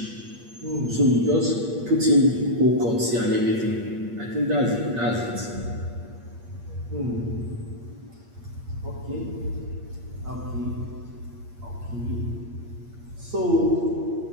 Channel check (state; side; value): late; left; 8.6 ms